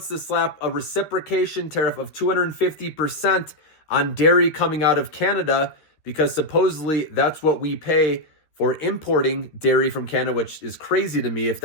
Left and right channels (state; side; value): late; right; 13 ms